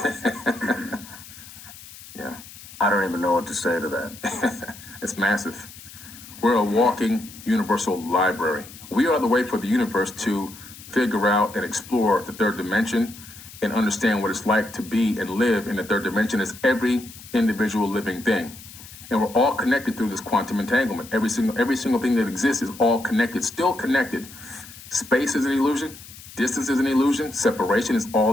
Yeah. I don't even know what to say to that. It's massive. We're a walking universal library. We are the way for the universe to figure out and explore the third dimension and understand what it's like to be and live in the third dimension as every individual living thing. And we're all connected through this quantum entanglement. Every single thing that exists is all connected, still connected. Space is an illusion. Distance is an illusion. Separation is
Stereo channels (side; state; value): left; noise; hiss, 17 dB below the sound